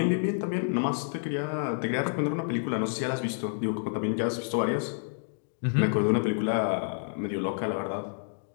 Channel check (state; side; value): silent; right; digital silence